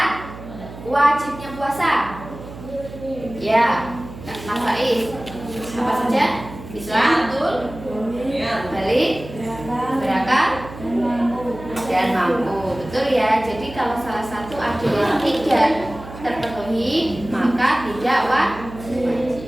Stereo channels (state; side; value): noise; right; hum, 14 dB below the sound